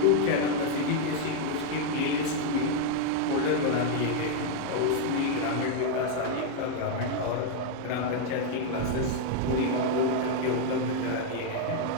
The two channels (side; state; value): both; different; correlation 0.00